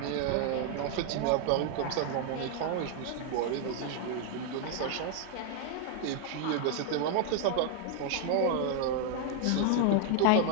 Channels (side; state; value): both; different; correlation 0.00